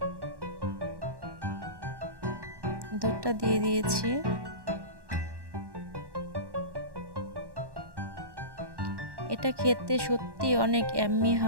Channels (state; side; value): late; left; 1.1 ms